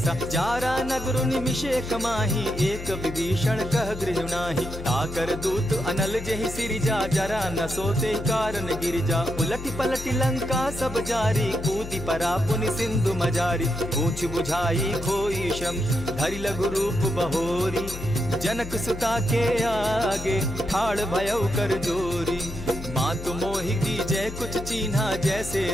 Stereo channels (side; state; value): left; noise; hum, 10 dB below the sound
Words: जारा नगर निमिषे कमाही, एक विभीषण कह गृह नाही। ताकर दूत अनल जेहि सिरिजा, जरा न सोते कारण गिरिजा। उलटी पलटी लंका सब जारी, कूदी परा पुनि सिंधु मजारी। पूछ बुझाई खोई शम, धरि लघु रूप बहोरी। जनक सुता के आगे, ठाड़ भयउ कर जोरी। मातु मोहि दीजै कुछ चीन्हा, जैसे